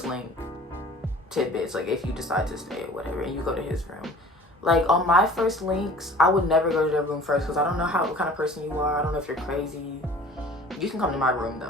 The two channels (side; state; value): both; normal; correlation 0.45